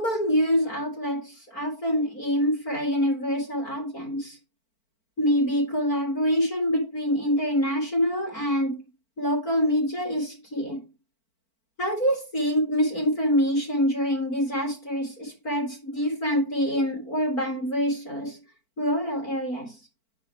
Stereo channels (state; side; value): late; right; 4.5 ms